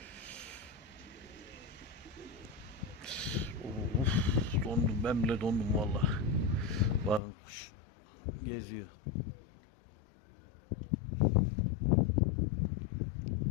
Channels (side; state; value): right; drops out; at 7.2 s